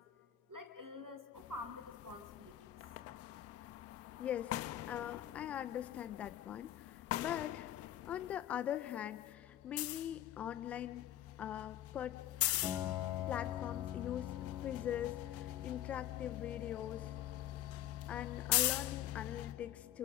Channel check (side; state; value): right; quieter; 12.1 dB